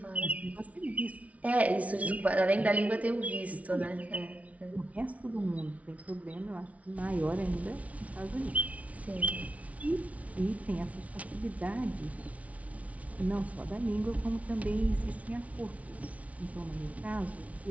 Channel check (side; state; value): left; late; 0.067 ms